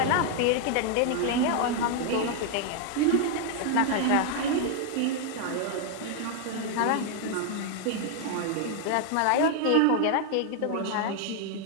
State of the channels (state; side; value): different; both; correlation 0.00